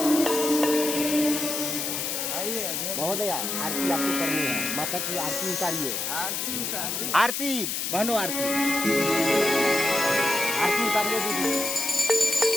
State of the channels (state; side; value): noise; left; hiss, 2 dB below the sound